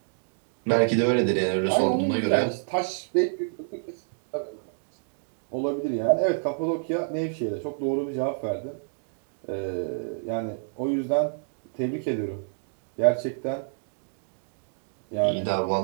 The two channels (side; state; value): left; silent; digital silence